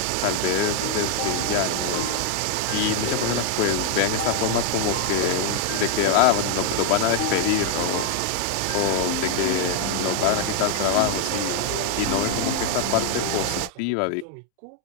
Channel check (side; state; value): both; different; correlation 0.00